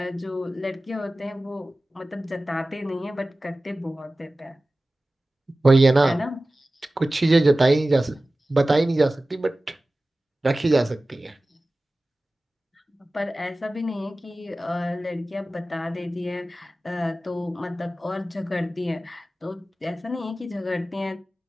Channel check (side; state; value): both; normal; correlation 0.96